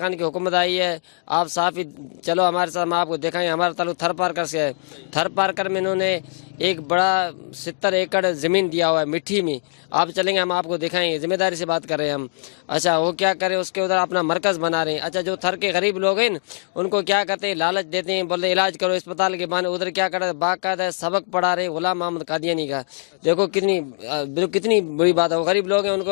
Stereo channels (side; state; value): right; silent; digital silence